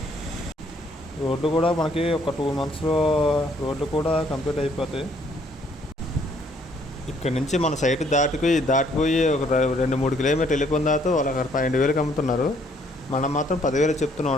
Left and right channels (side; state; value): both; normal; correlation 0.65